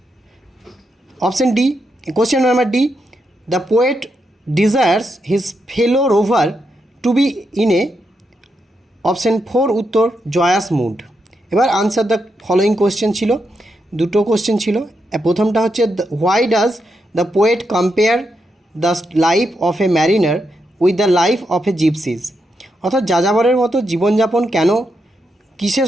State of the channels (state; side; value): normal; both; correlation 0.83